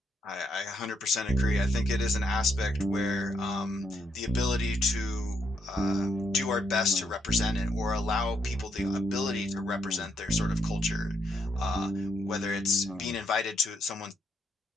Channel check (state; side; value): normal; both; correlation 0.76